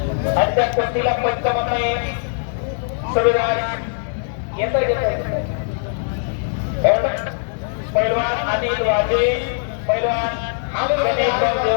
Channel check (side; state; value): right; silent; 65 dB below the other